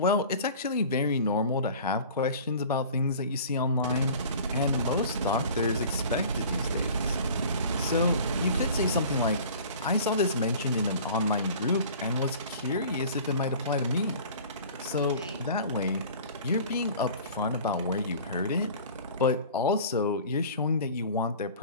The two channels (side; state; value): both; inverted; correlation -0.43